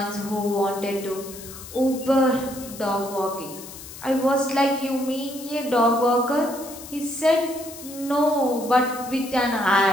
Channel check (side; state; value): left; noise; hiss, 14 dB below the sound